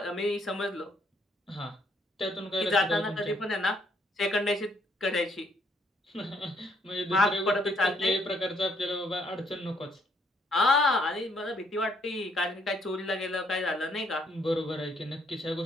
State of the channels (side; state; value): both; normal; correlation 0.69